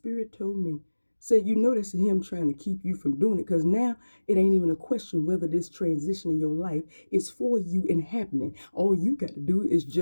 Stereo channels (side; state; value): both; inverted; correlation -1.00